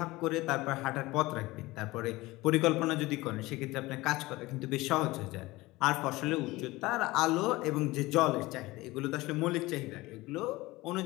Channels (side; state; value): right; quieter; 20.1 dB